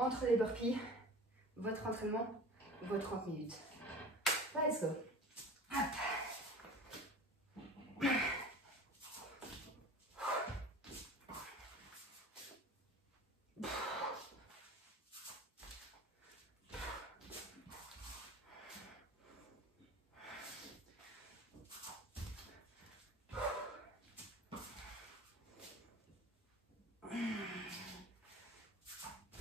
les burpees, votre entraînement, vos 30 minutes. Let's go. Hop.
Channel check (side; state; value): both; normal; correlation 0.40